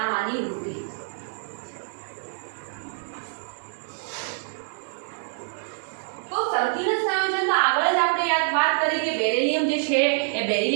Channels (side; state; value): left; silent; digital silence